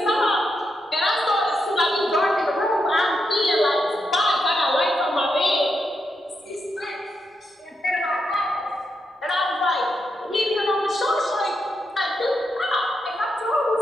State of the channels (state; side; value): normal; both; correlation 0.83